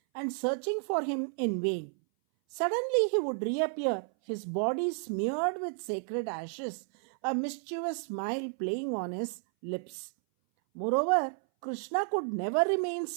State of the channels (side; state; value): left; silent; 57 dB below the other